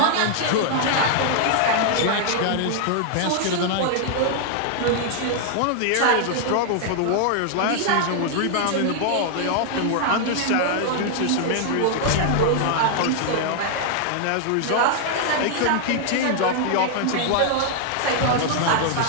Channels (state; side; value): different; both; correlation -0.01